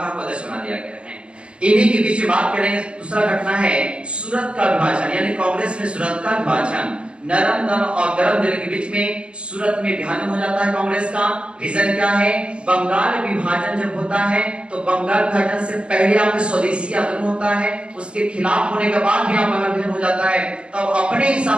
को अध्यक्ष बना दिया गया है। इन्हीं के बीच में बात करेंगे, दूसरा घटना है सूरत का विभाजन, यानी कांग्रेस में सूरत का विभाजन। नरम दल और गरम दिल के बीच में सूरत में विभाजन हो जाता है कांग्रेस का। रीजन क्या है? बंगाल विभाजन जब होता है तो बंगाल विभाजन से पहले आपके स्वदेशी आंदोलन होता है, उसके खिलाफ होने के बाद भी बंगाल विभाजन हो जाता है, तब अपने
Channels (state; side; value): late; left; 0.057 ms